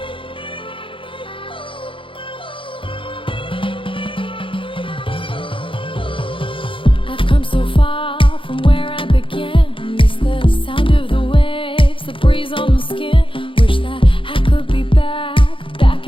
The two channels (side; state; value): right; late; 0.25 ms